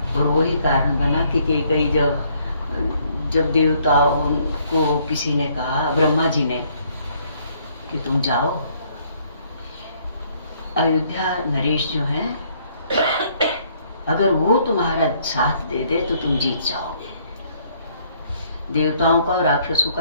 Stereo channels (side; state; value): both; inverted; correlation -0.66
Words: और वही कारण बना कि कई जब देवताओं को किसी ने कहा, ब्रह्मा जी ने, कि तुम जाओ अयोध्या नरेश जो है, अगर वो तुम्हारा साथ दे दे तो तुम जीत जाओगे। देवताओं का और राक्षसों